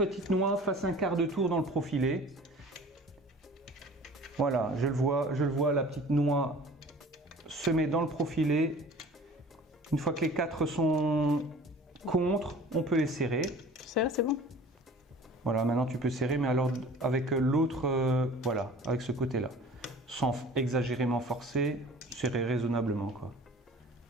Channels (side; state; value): both; normal; correlation 0.45